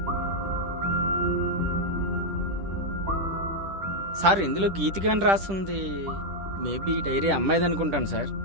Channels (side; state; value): left; late; 10 ms